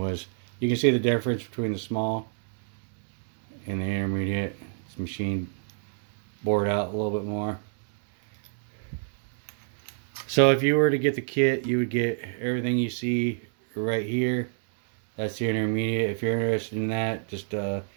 you can see the difference between the small and the intermediate. It's machined, bored out a little bit more. So if you were to get the kit, you would get everything you see right here. That's the intermediate. If you're interested in that, just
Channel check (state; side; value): silent; left; digital silence